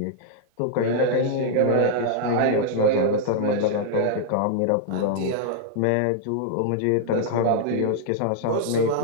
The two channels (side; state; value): both; different; correlation -0.01